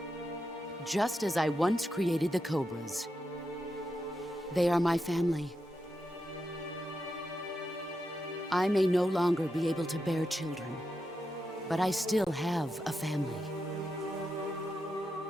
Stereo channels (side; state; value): both; normal; correlation 0.87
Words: Just as I once created the Cobras. They are my family. I may no longer be able to bear children, but I still have a family.